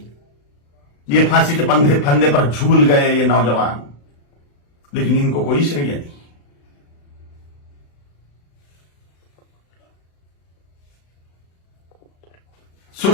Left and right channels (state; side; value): late; right; 35 ms